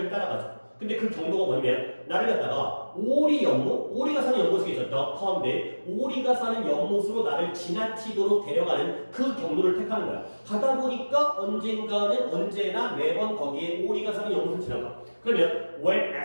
따라가죠. 근데 그 경로가 뭐냐면 나를 갖다가 오리가 사는 연못이 있었다. 가운데 오리가 사는 연못으로 나를 지나치도록 데려가는 그 경로를 택하는 거야. 가다 보니까 언제나 매번 거기에 오리가 사는 연못을 지나가. 그러면 when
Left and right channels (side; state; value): both; inverted; correlation -1.00